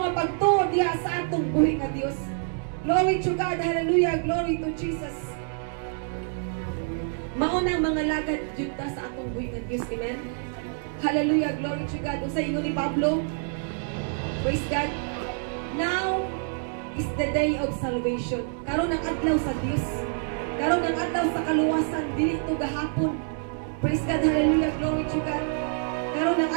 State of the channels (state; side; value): silent; left; 60 dB below the other